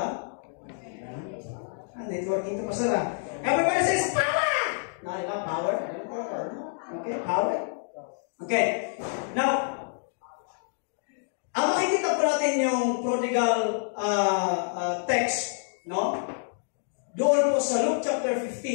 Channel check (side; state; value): right; silent; digital silence